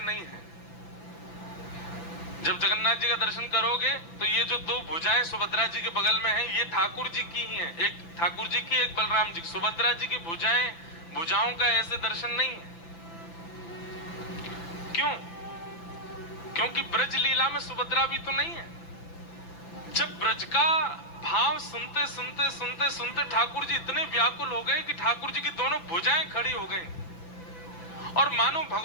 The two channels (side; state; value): right; late; 5.9 ms